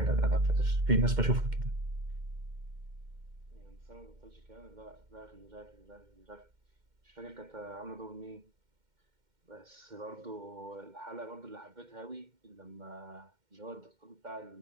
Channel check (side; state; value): left; late; 2.1 ms